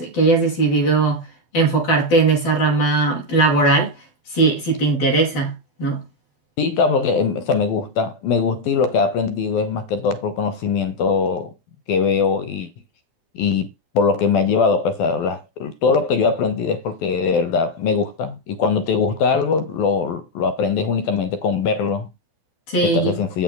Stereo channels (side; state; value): right; late; 12 ms